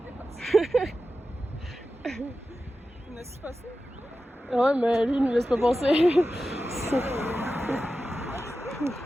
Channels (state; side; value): normal; both; correlation 0.93